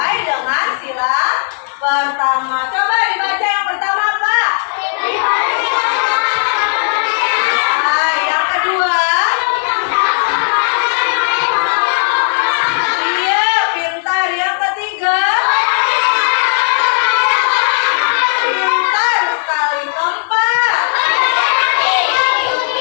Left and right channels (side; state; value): right; silent; 70 dB below the other